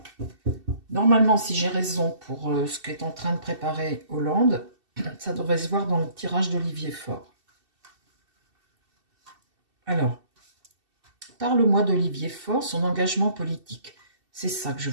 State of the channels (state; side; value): late; left; 2.7 ms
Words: Normalement, si j'ai raison pour ce qu'est en train de préparer Hollande, ça devrait se voir dans le tirage d'Olivier Faure. Alors, parle-moi d'Olivier Faure, son engagement politique. C'est ça que je